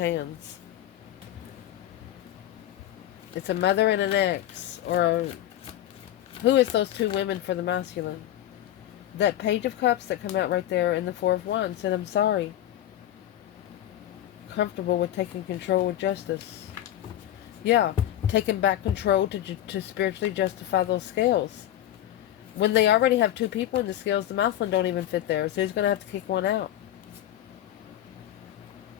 It's a mother and an ex, or who is those 2 women for the masculine? That Page of Cups that come out right there and the 4 of Wands said, I'm sorry. Comfortable with taking control with justice. Yeah, taking back control to spiritually justify those scales. When they already have 2 people in the scales, the masculine don't even fit there. So he's going to have to kick one out.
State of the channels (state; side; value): quieter; right; 12.6 dB